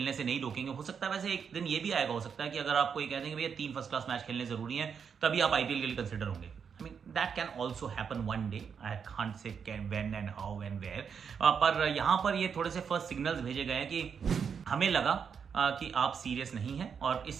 से नहीं रोकेंगे। हो सकता है वैसे एक दिन ये भी आएगा, हो सकता है कि अगर आपको ये कह देंगे भैया 3 फर्स्ट क्लास मैच खेलने जरूरी हैं तभी आप आईपीएल के लिए कंसिडर होंगे। That can also happen one day, I can't say when and how and where. पर यहाँ पर ये थोड़े से फर्स्ट सिग्नल्स भेजे गए हैं कि हमें लगा कि आप सीरियस नहीं हैं और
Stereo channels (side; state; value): left; quieter; 6.8 dB